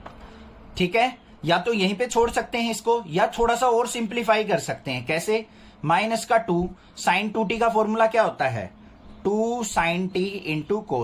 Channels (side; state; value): both; identical; correlation 1.00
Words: ठीक है। या तो यहीं पे छोड़ सकते हैं इसको, या थोड़ा सा और सिंप्लीफाई कर सकते हैं। कैसे, माइनस का 2 साइन 2t का फॉर्मूला क्या होता है, 2 sine t into